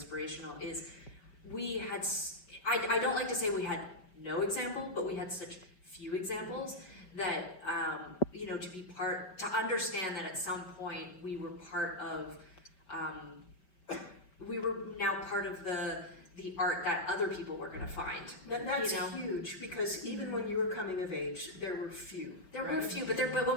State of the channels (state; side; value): late; right; 5.3 ms